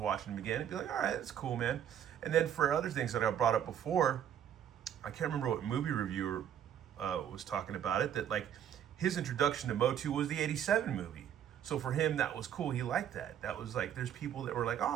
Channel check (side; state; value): left; quieter; 9.7 dB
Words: them again and be like, all right, that's cool, man. And then for other things that I brought up before, I can't remember what movie reviewer was talking about it, that like his introduction to Motu was the 87 movie. So for him, that was cool. He liked that. That was like, there's people that were like,